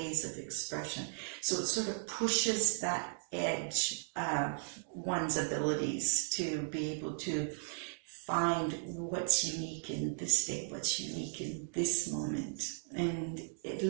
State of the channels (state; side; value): silent; left; digital silence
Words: of expression. So it sort of pushes that edge of one's abilities to be able to find what's unique in this day, what's unique in this moment. And it